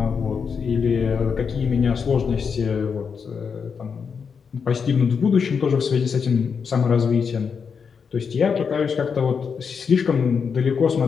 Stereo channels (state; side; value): quieter; right; 6.1 dB